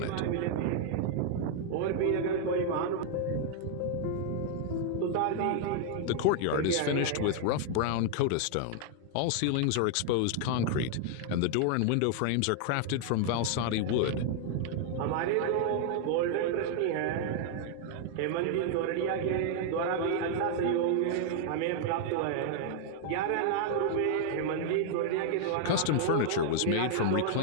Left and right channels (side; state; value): both; different; correlation 0.00